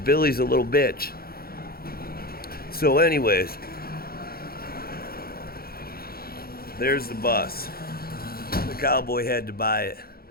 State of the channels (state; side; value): late; right; 0.44 ms